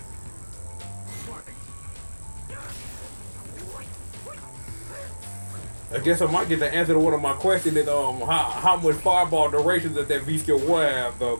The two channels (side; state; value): both; inverted; correlation -1.00